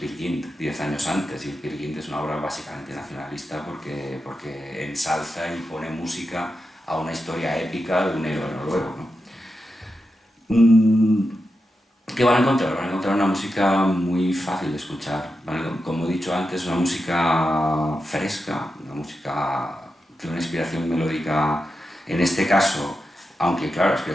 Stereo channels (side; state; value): both; normal; correlation 0.89